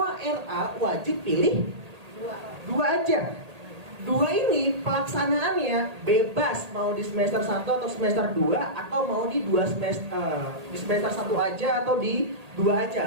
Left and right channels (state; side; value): late; left; 1.8 ms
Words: RA wajib pilih 2 aja. 2 ini pelaksanaannya bebas, mau di semester 1 atau semester 2, atau mau di 2 semester di semester 1 aja atau di 2